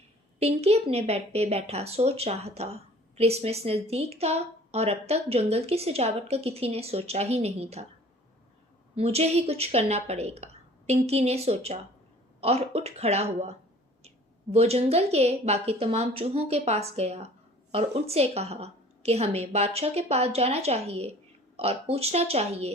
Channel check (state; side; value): normal; both; correlation 0.50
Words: पिंकी अपने बेड पे बैठा सोच रहा था। क्रिसमस नज़दीक था और अब तक जंगल की सजावट का किसी ने सोचा ही नहीं था। मुझे ही कुछ करना पड़ेगा, पिंकी ने सोचा और उठ खड़ा हुआ। वो जंगल के बाकी तमाम चूहों के पास गया और उनसे कहा कि हमें बादशाह के पास जाना चाहिए और पूछना चाहिए